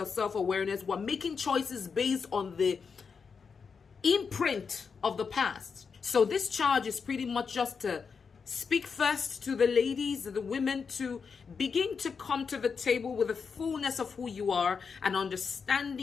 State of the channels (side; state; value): right; quieter; 5.6 dB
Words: self-awareness, we're making choices based on the imprint of the past. So this charge is pretty much just to speak first to the ladies, the women, to begin to come to the table with the fullness of who you are, an